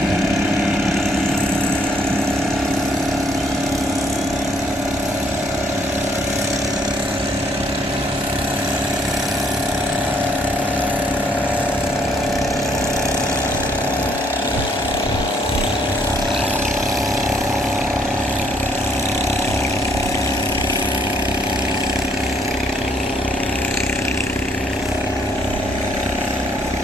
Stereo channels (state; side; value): normal; both; correlation 0.68